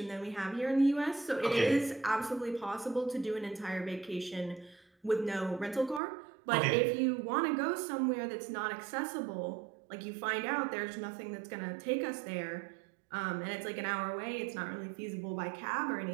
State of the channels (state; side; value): drops out; left; at 6.0 s